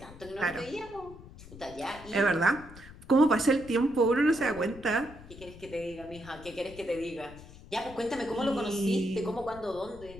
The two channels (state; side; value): noise; left; rumble, 17 dB below the sound